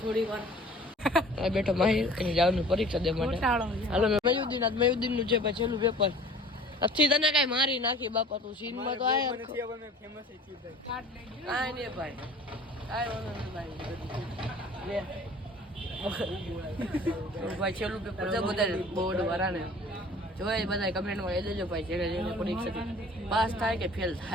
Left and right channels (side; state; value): both; normal; correlation 0.46